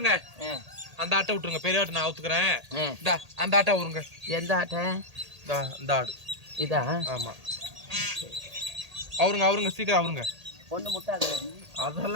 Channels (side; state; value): left; late; 1.8 ms